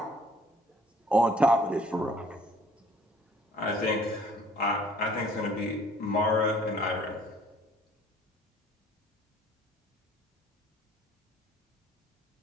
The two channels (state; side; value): normal; both; correlation 0.56